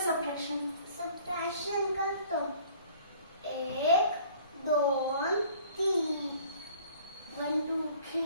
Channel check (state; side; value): inverted; both; correlation -0.52